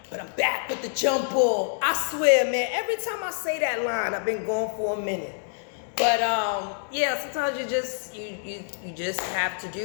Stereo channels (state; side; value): silent; right; digital silence